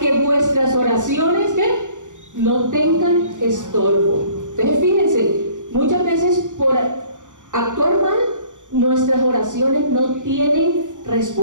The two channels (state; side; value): late; left; 0.86 ms